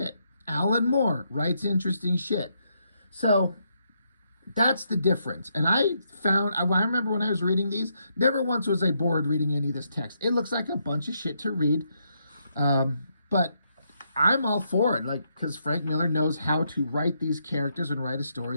Alan Moore writes interesting shit. So that's the difference. And I remember when I was reading these, never once was I bored reading any of this text. It looks like a bunch of shit to read. But I'm all for it, like, because Frank Miller knows how to write these characters and write a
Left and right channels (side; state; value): both; inverted; correlation -0.78